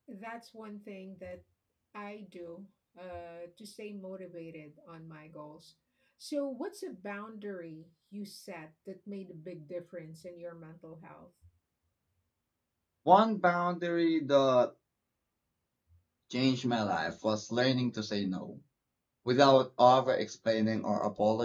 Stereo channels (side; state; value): both; identical; correlation 1.00